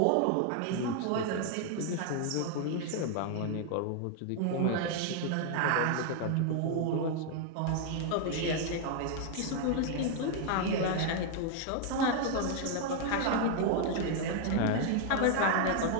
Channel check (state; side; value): different; both; correlation 0.00